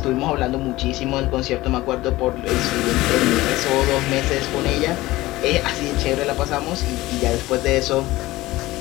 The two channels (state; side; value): quieter; right; 18.2 dB